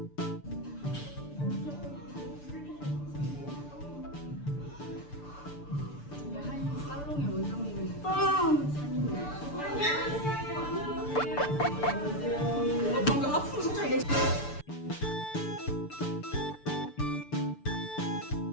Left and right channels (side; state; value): right; late; 6.9 ms